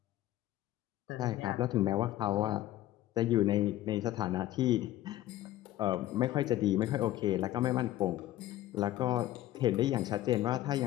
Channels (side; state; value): right; quieter; 14.6 dB